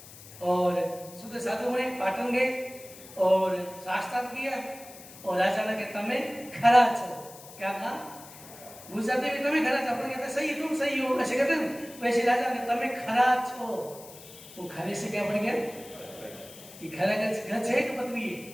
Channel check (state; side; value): noise; left; hiss, 18 dB below the sound